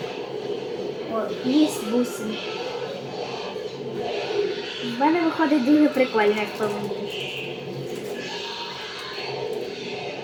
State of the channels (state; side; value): identical; both; correlation 1.00